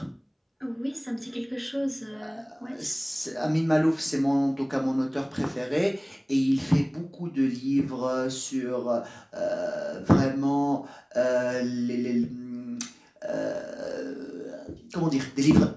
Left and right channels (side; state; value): both; identical; correlation 1.00